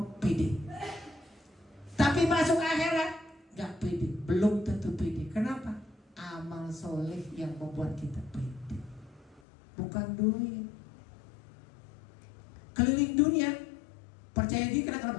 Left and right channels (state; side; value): drops out; right; at 9.4 s